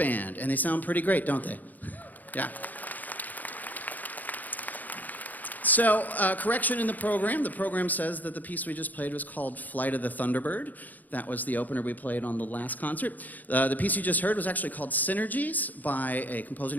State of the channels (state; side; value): late; right; 0.082 ms